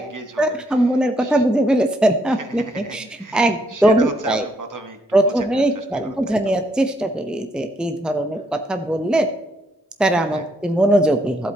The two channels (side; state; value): both; normal; correlation 0.73